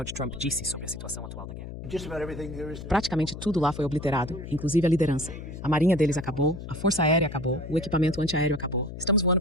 Trump disse sobre a situação atual da guerra. Praticamente tudo lá foi obliterado, inclusive a liderança. A marinha deles acabou, a força aérea acabou, o equipamento antiaéreo acabou. Estamos voando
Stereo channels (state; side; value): noise; left; hum, 10 dB below the sound